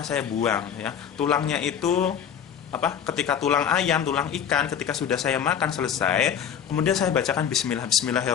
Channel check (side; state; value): right; quieter; 8.4 dB